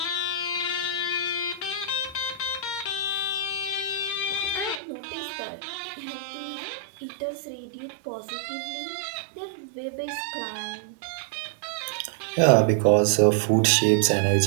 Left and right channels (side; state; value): left; drops out; at 4.8 s